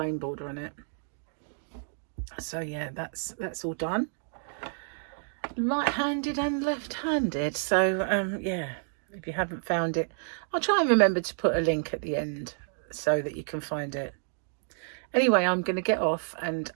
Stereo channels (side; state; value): left; silent; 58 dB below the other